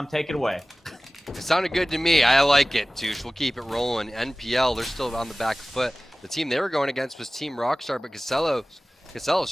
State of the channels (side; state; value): both; normal; correlation 0.97